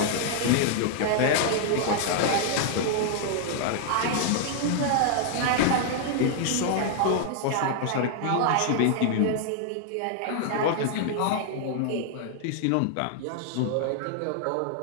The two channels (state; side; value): different; both; correlation -0.01